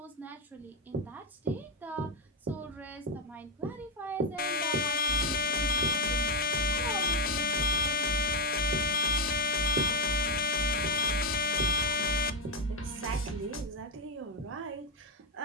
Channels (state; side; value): normal; both; correlation 0.06